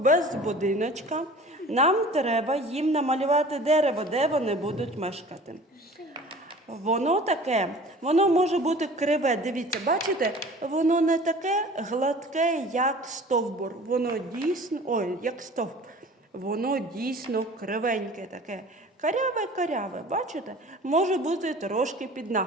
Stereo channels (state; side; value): normal; both; correlation 0.44